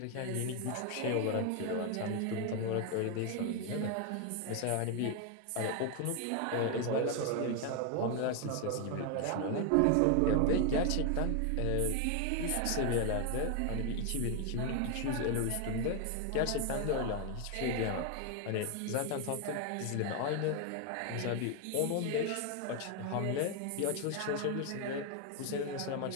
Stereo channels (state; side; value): different; both; correlation 0.01